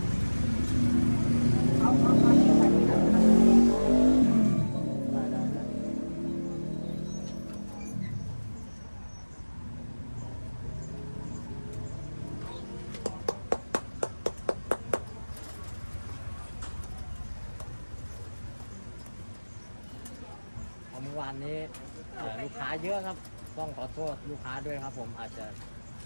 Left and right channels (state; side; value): inverted; both; correlation -1.00